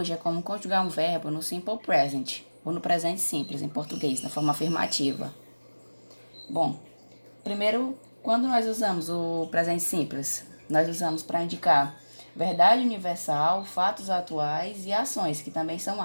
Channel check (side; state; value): both; inverted; correlation -1.00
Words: é como conjugar um verbo no simple present, ou no presente simples, em português, na forma afirmativa. Bom, primeiro, quando nós usamos o presente simples? Nós usamos para indicar verdade universal, fatos atuais e ações, que também são